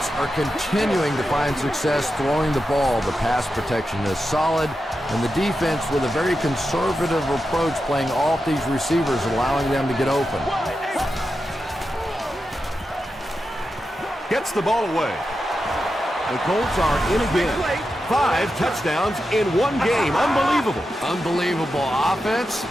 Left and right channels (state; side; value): normal; both; correlation 0.89